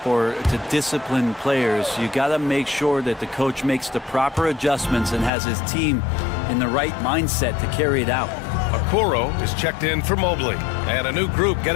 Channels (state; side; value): drops out; right; at 5.3 s